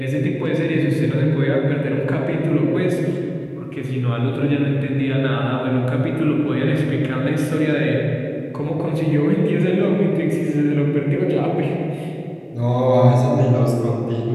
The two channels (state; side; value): identical; both; correlation 1.00